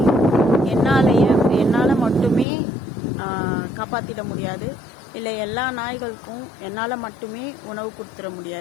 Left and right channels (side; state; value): right; drops out; at 2.5 s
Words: என்னால் மட்டுமே காப்பாற்றிட முடியாது, இல்லை எல்லா நாய்களுக்கும் என்னால் மட்டுமே உணவு கொடுத்துட